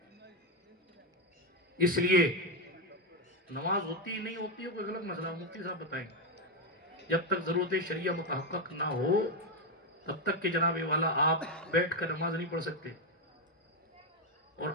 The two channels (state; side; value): normal; both; correlation 0.05